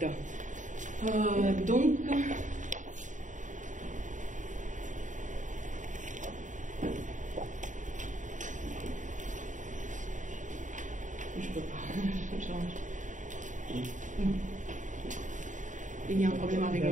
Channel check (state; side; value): late; left; 0.36 ms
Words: Donc, je peux pas. Il y a un problème avec